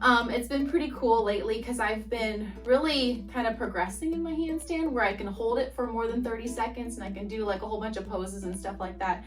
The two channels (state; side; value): identical; both; correlation 1.00